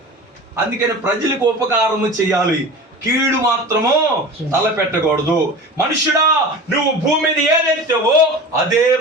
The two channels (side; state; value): both; normal; correlation 0.34